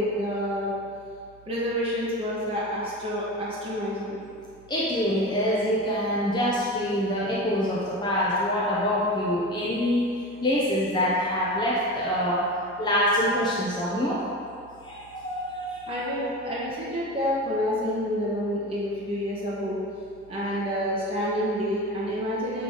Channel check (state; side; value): noise; right; hum, 25 dB below the sound